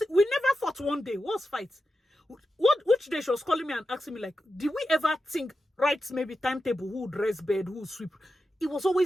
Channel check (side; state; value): both; normal; correlation 0.90